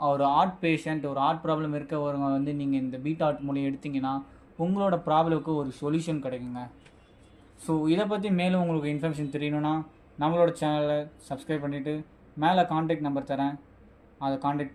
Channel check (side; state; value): both; identical; correlation 1.00